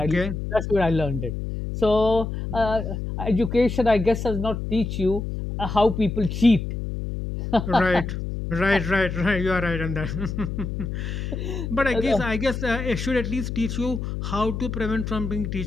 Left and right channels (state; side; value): noise; left; hum, 5 dB below the sound